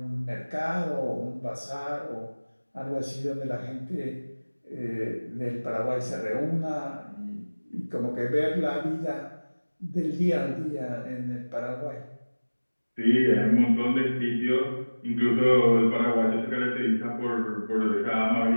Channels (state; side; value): inverted; both; correlation -1.00